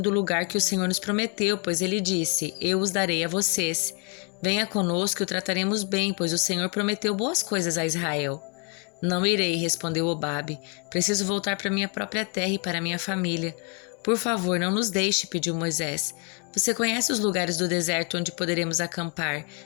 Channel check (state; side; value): quieter; right; 35.2 dB